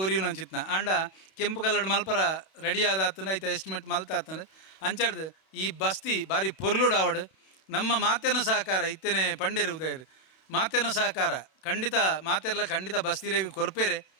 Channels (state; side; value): late; right; 31 ms